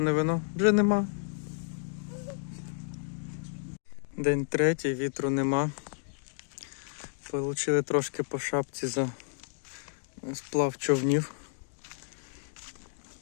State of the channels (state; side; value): silent; right; digital silence